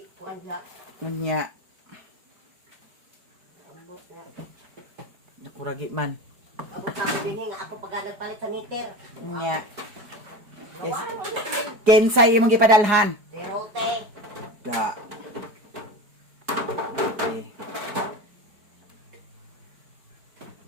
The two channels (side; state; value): left; late; 4.9 ms